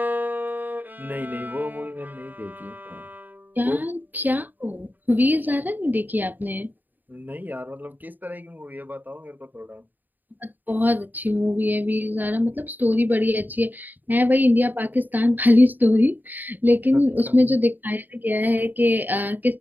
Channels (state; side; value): late; left; 0.088 ms